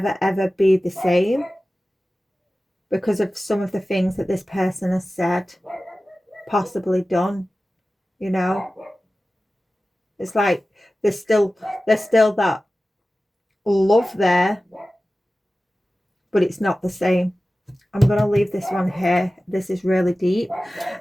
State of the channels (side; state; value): both; normal; correlation 0.96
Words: ever be the same because of some of the things that this person has said, possibly done, you know. It's like there's still that love there, but it's not the same. I'm going to leave this one here. This is really deep.